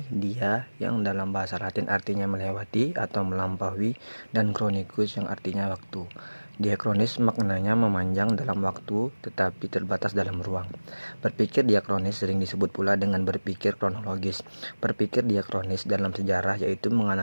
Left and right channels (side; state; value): both; inverted; correlation -1.00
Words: dia yang dalam bahasa Latin artinya melewati atau melampaui, dan kronikus yang artinya waktu. Diakronis maknanya memanjang dalam waktu tetapi terbatas dalam ruang. Berpikir diakronis sering disebut pula dengan berpikir kronologis. Berpikir diakronis dalam sejarah yaitu